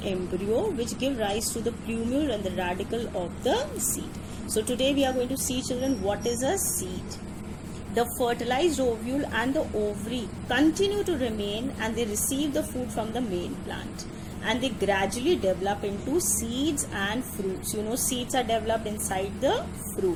embryo, which give rise to the plumule and the radicle of the seed. So today we are going to see, children, what is a seed. The fertilized ovule and the ovary continue to remain, and they receive the food from the main plant, and they gradually develop into seeds and fruits. You know, seeds are developed inside the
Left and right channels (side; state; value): both; identical; correlation 1.00